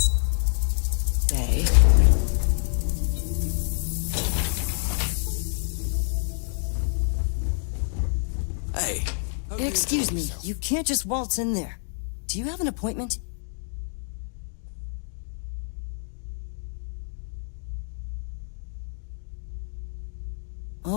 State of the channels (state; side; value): silent; right; digital silence